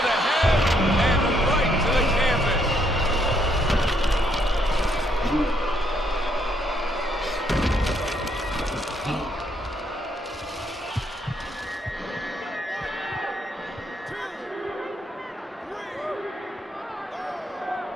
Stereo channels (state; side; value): normal; both; correlation 0.72